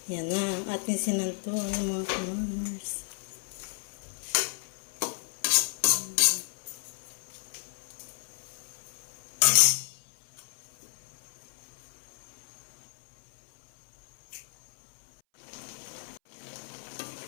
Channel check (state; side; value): silent; right; 56 dB below the other